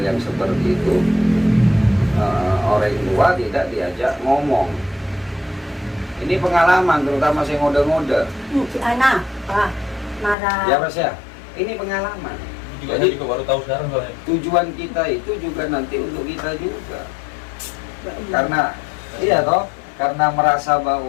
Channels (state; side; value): drops out; right; at 10.4 s